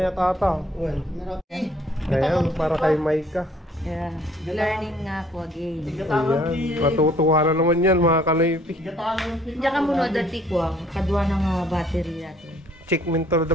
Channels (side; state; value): both; normal; correlation 0.60